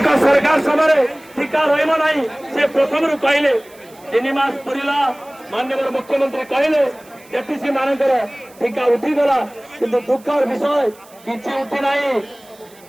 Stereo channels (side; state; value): right; noise; hiss, 26 dB below the sound